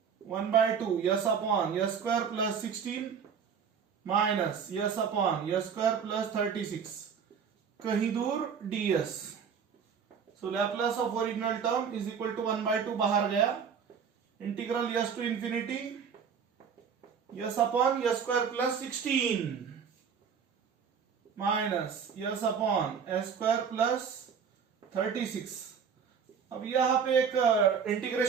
1/2 s upon s square plus 16 minus s upon s square plus 36, कहीं दूर ds। So Laplace of original term is equal to 1/2 बाहर गया, integral s to infinity s upon s square plus 16 minus s upon s square plus 36। अब यहां पे एक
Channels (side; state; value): left; quieter; 6.8 dB